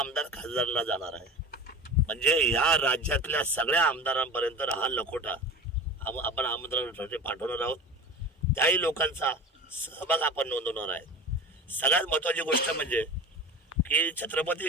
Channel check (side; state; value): both; normal; correlation 0.33